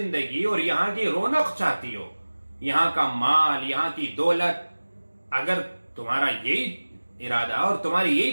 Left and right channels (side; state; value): both; inverted; correlation -1.00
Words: اور یہاں کی رونق چاہتی ہو، یہاں کا مال، یہاں کی دولت، اگر تمہارا یہی ارادہ اور تمہاری